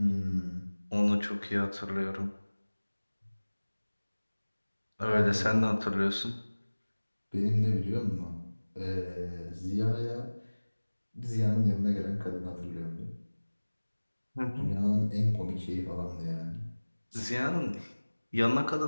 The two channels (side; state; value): both; inverted; correlation -1.00